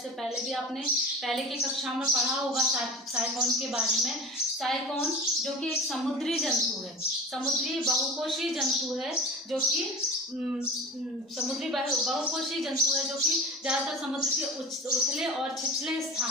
पहले भी आपने पहले की कक्षा में पढ़ा होगा साइकोन के बारे में। साइकोन जो कि एक समुद्री जंतु है, समुद्री बहुकोषीय जंतु है, जो कि समुद्री बहुकोषीय जंतु है, जो कि ज़्यादातर समुद्र के उथले और छिछले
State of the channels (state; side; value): normal; both; correlation 0.33